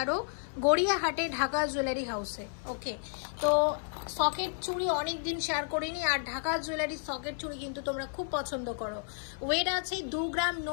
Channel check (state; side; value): silent; right; 57 dB below the other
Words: গড়িয়াহাটে ঢাকা জুয়েলারি হাউসে। ওকে, তো সকেট চুড়ি অনেক দিন শেয়ার করিনি, আর ঢাকা জুয়েলারি সকেট চুড়ি কিন্তু তোমরা খুব পছন্দ করো। ওয়েট আছে 2 গ্রাম